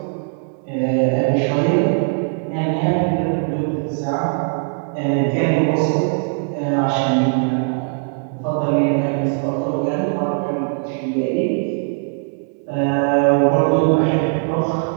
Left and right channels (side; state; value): left; silent; 57 dB below the other